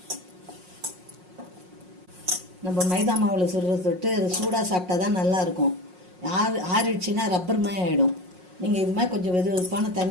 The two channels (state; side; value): late; left; 5.5 ms